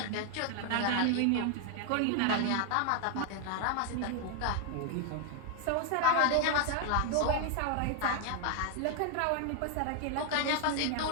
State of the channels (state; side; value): different; both; correlation 0.01